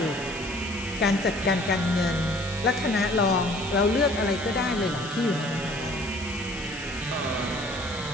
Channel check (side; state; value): left; noise; hiss, 14 dB below the sound